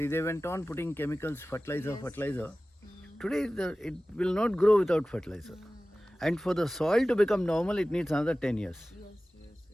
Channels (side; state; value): both; normal; correlation 0.97